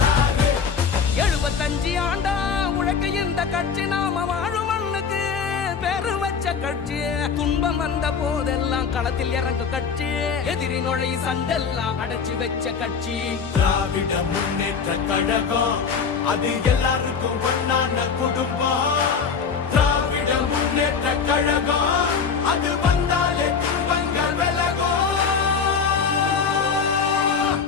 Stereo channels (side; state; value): right; quieter; 6.0 dB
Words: 75 ஆண்டா உழைக்க இந்த கட்சி நாம வாழும் மண்ணுக்கு பெரு வச்ச கட்சி துன்பம் வந்த போதெல்லாம் களத்தில் இறங்க கட்சி எதிரி நுழை சண்டெல்லாம் அடைச்சு வச்ச கட்சி திராவிட முன்னேற்ற கழகம் அது எல்லாருக்கும் ஒன்னான குடும்பம் திராவிட முன்னேற்ற கழகம் அது வந்தாலே துன்பங்கள் விலகும்